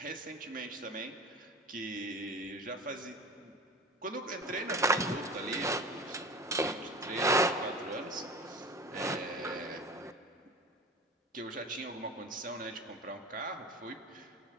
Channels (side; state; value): both; normal; correlation 0.35